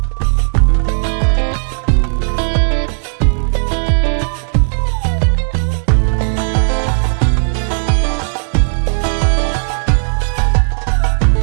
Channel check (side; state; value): left; silent; digital silence